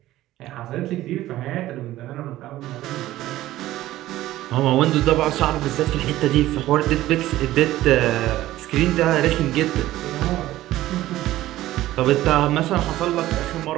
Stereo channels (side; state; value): left; quieter; 15.2 dB